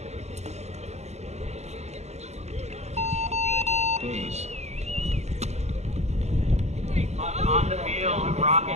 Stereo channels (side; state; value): left; late; 0.32 ms